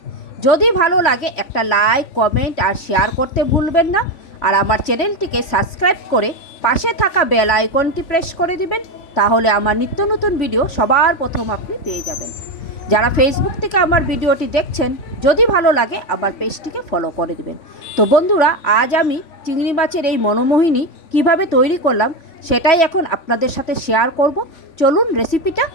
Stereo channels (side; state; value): right; late; 3.5 ms